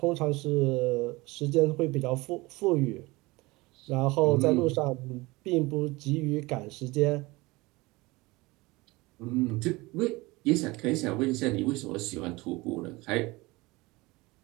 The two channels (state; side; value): quieter; left; 22.3 dB